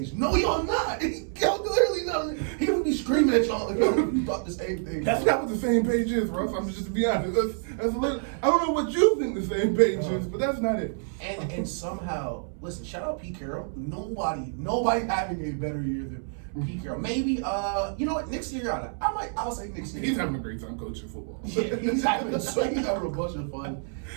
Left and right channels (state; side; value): silent; left; 60 dB below the other